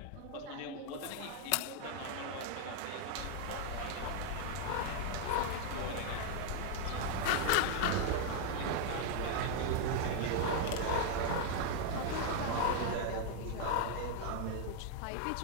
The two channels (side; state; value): both; different; correlation 0.00